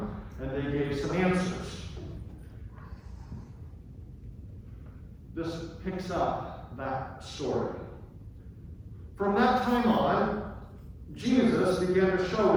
And they gave some answers. This picks up that story. From that time on, Jesus began to show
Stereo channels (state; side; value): identical; both; correlation 1.00